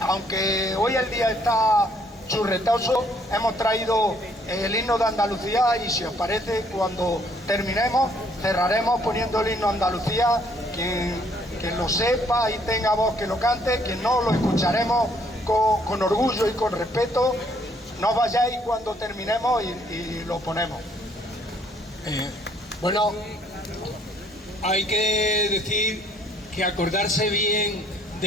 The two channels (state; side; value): normal; both; correlation 0.65